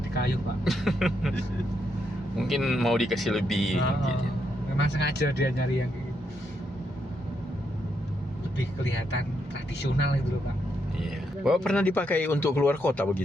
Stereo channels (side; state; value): both; normal; correlation 0.79